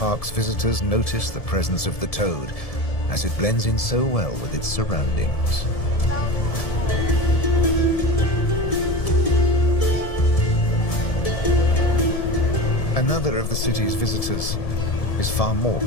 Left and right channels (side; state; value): right; late; 1.7 ms